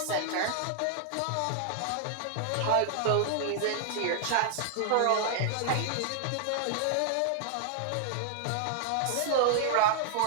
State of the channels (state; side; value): different; both; correlation 0.00